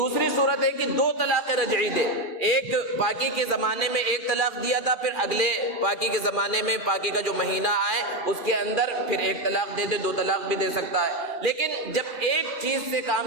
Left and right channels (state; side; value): late; right; 2.4 ms